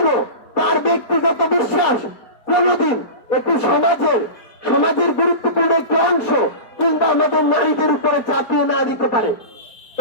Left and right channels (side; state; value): right; late; 4.7 ms